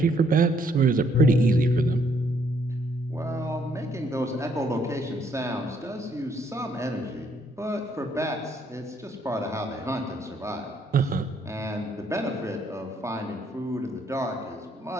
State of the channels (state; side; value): normal; both; correlation 0.68